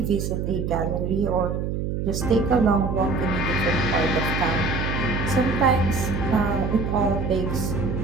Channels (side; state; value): right; noise; hum, 2 dB below the sound